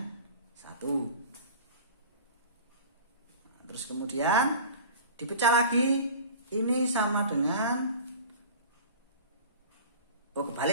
1. Terus kemudian dipecah lagi, ini sama dengan,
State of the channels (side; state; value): both; inverted; correlation -0.40